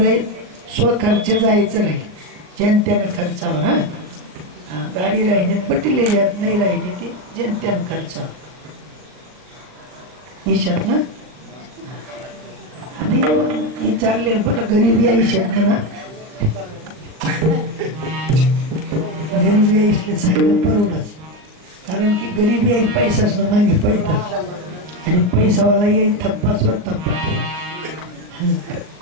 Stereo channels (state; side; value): late; left; 39 ms